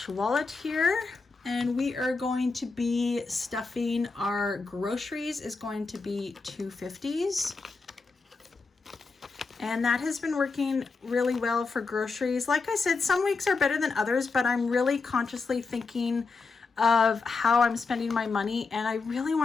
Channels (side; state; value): right; quieter; 4.3 dB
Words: wallet here. And we are going to be stuffing our groceries is going to be $2.50s. And that has been working really well for groceries. Like I said, some weeks are better than others, but I'm really consciously thinking of how I'm spending my money. And I really